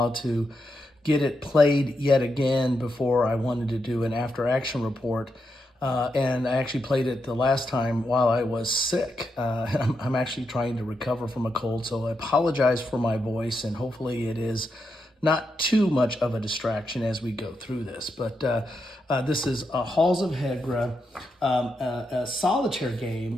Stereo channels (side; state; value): both; normal; correlation 0.84